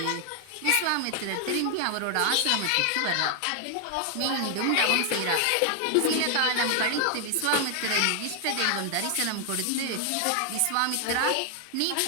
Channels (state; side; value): different; both; correlation 0.00